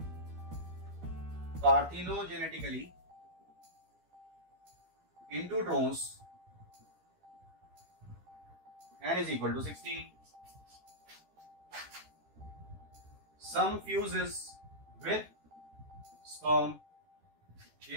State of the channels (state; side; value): late; left; 13 ms